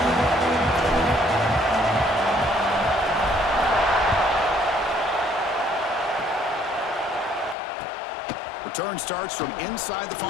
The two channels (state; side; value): drops out; right; at 7.6 s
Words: Return starts from inside the 5.